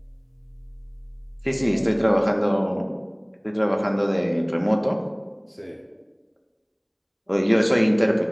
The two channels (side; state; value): both; identical; correlation 1.00